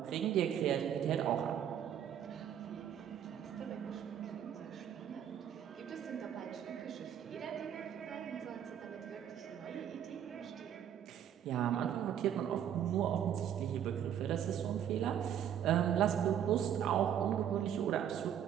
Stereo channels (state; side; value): quieter; left; 9.6 dB